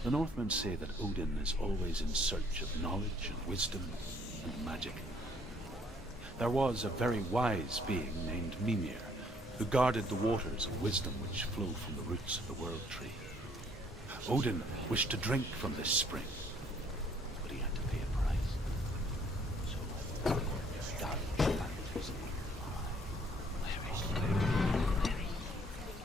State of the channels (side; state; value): both; normal; correlation 0.63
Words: Northmen say that Odin is always in search of knowledge and wisdom and magic. There was a very wise being named Mimir, who guarded the waters of wisdom which flow from the roots of the World Tree. Odin wished to drink from this spring, but he had to pay a price. So, God planted his evil eye.